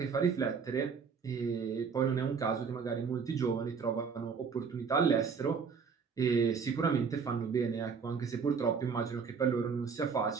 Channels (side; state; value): left; quieter; 5.8 dB